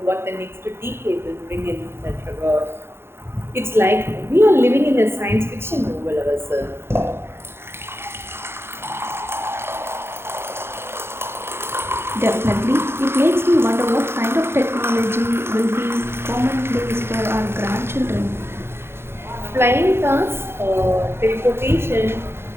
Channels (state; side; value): late; left; 0.12 ms